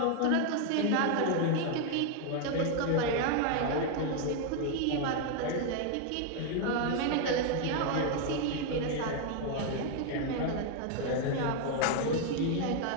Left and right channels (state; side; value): different; both; correlation 0.00